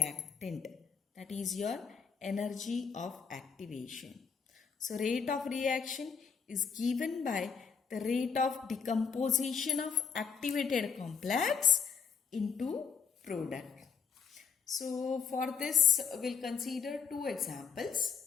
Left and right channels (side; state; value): right; quieter; 6.3 dB